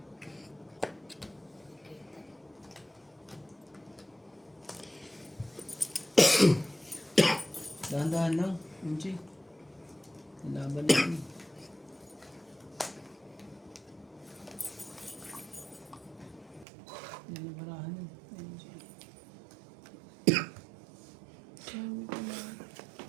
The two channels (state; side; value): drops out; left; at 16.7 s